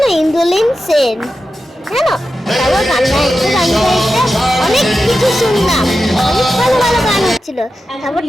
ইন্দ্রলীন সেন জানো, তারপর গান গাইতে অনেক কিছু শুনলাম, অনেক ভালো ভালো গান হচ্ছিল। তারপর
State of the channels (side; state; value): both; normal; correlation 0.91